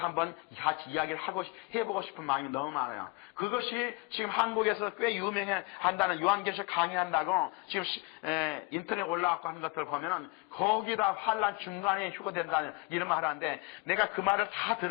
같이 이야기를 해보고 싶은 마음이 너무 많아요. 그것이 지금 한국에서 꽤 유명한다는 요한계시록 강의한다고 지금 인터넷에 올라왔고 하는 것들을 보면은 거기다 환란 중간에 휴거된다는 이런 말을 하는데 내가 그 말을 다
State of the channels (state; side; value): quieter; right; 26.5 dB